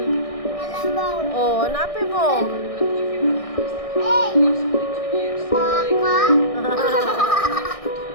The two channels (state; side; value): late; right; 1.6 ms